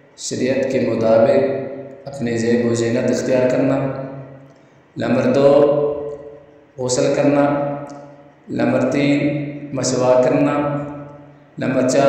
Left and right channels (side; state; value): both; identical; correlation 1.00